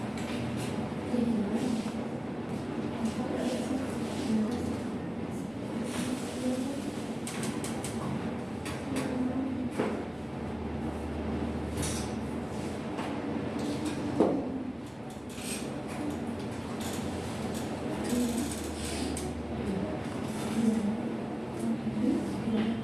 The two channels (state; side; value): noise; left; rumble, 26 dB below the sound